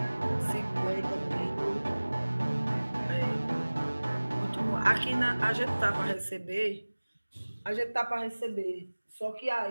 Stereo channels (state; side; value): inverted; both; correlation -1.00